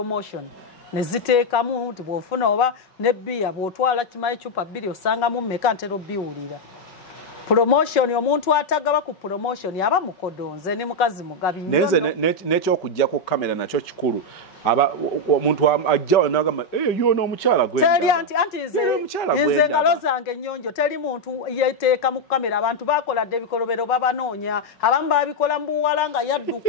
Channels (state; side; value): late; right; 5.3 ms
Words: ne ziteekamu nti bw'ofuna oba ne bbiya bw'otwala kimayi cupa 2 osangamu mmeka ntera obbiwulira promotion omuntu atagaba ku promotion aba mukodonze ne mukazi mugabi neze n'ekyokujja ku kamera nakyo kikulu omuntu ajja n'agamba yono omukyala gwe teri anti nze ngalo zange ennyonjo teri muntu yeteeka mu kamera abantu bakoladde ebikolobero babanoonya abamu babikola mu buwala nga